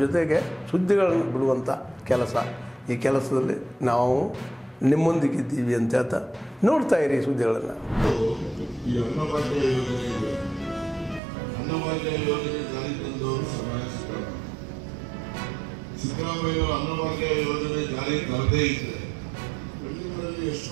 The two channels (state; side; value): drops out; left; at 11.2 s